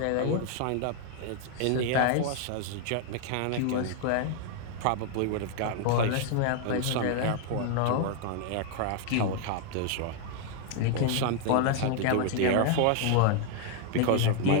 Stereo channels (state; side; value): different; both; correlation 0.00